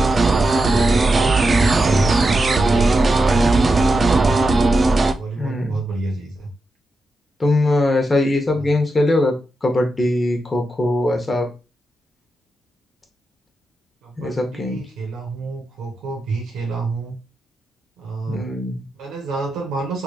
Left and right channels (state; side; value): normal; both; correlation 0.87